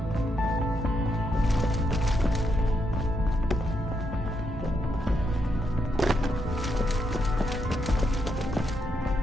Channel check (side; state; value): both; normal; correlation 0.80